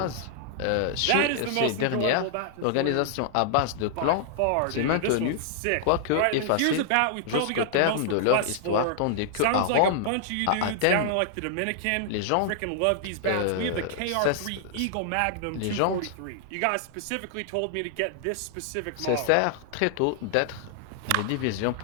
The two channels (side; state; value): both; different; correlation -0.01